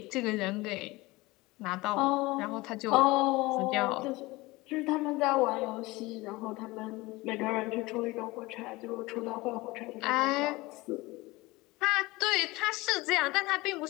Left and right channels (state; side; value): quieter; right; 21.4 dB